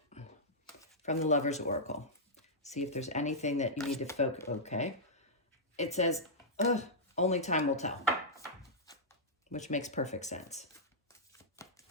from the Lover's Oracle. See if there's anything that you need to focus, okay. It says, only time will tell, which makes perfect sense.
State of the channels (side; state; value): both; normal; correlation -0.11